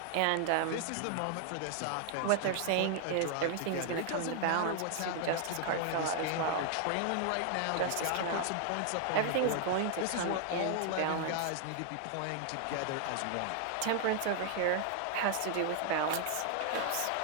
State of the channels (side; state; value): both; different; correlation 0.00